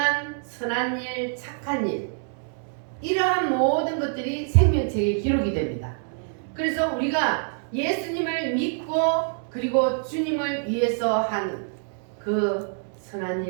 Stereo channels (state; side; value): silent; left; 61 dB below the other